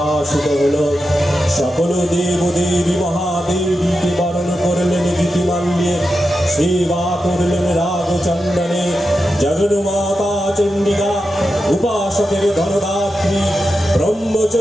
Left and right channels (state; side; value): normal; both; correlation 0.89